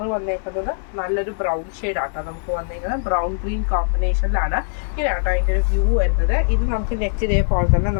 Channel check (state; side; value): silent; right; 65 dB below the other